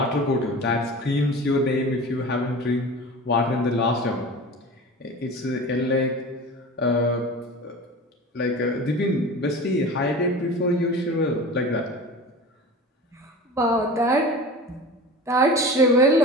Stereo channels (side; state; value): both; normal; correlation 0.35